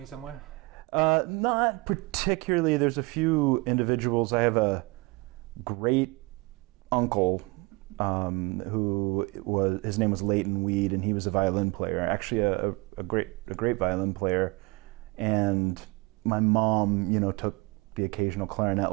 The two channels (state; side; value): quieter; left; 25.4 dB